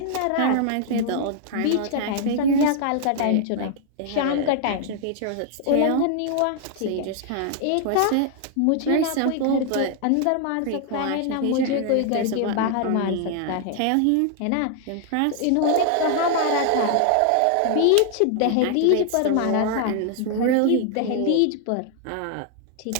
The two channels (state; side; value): different; both; correlation 0.00